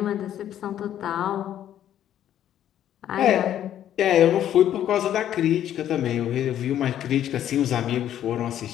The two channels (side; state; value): right; quieter; 11.0 dB